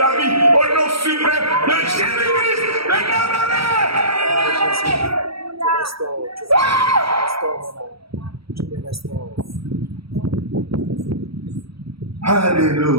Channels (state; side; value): late; left; 0.75 ms